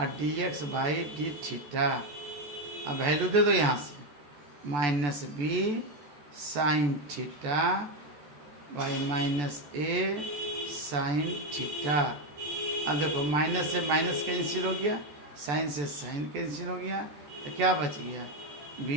d x by d theta. अब वैल्यू दे दो यहाँ से minus b sine theta by minus a sine theta. अब देखो माइनस से माइनस कैंसिल हो गया, साइन से साइन कैंसिल हो गया, तो क्या बच गया बी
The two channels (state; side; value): late; left; 14 ms